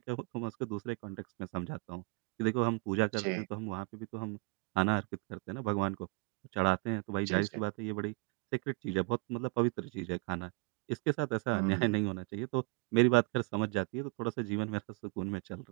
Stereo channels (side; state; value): left; quieter; 29.4 dB